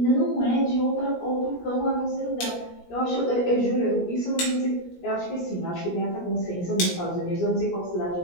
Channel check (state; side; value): late; right; 17 ms